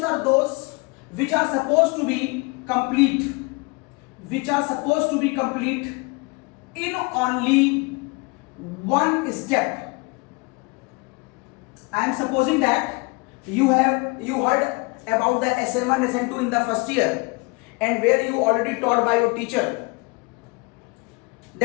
are those which are supposed to be complete, in only one step. I am supposing that you heard about the SN1, SN2 in the first year, and where you already taught by your teacher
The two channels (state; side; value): quieter; right; 28.6 dB